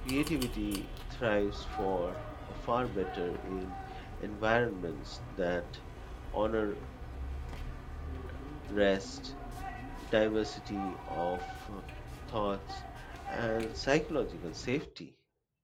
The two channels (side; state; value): both; identical; correlation 1.00